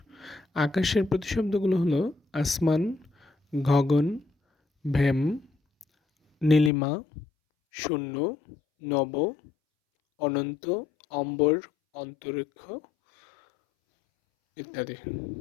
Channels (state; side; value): drops out; right; at 6.7 s